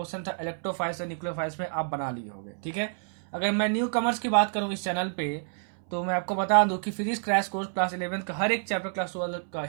था इलेक्ट्रोफाइल्स और न्यूक्लियोफाइल्स में आप बना लिए होंगे। ठीक है, अगर मैं न्यू कमर्स की बात करूँ इस चैनल पे तो मैं आपको बता दूं कि फिजिक्स क्रैश कोर्स क्लास 11 का हर एक चैप्टर, क्लास 12 का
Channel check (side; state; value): left; silent; 59 dB below the other